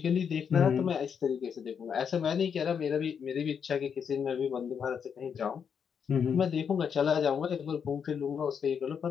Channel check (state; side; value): quieter; right; 7.1 dB